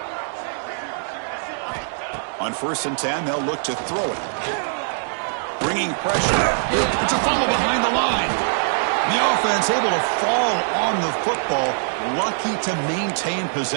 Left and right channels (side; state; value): left; silent; digital silence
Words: On 1st and 10, they'll look to throw it. Bringing pressure. It's a fumble behind the line. The offense able to fall on the football. Lucky to maintain